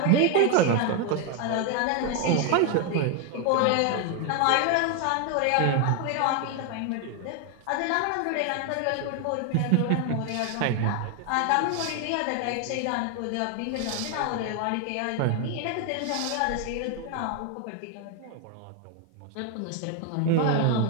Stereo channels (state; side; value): different; both; correlation 0.01